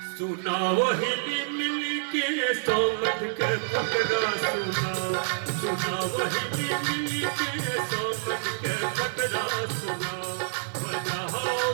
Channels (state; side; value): silent; left; 60 dB below the other